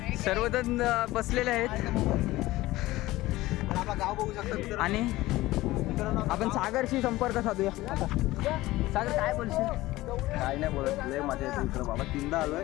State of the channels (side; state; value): right; quieter; 17.8 dB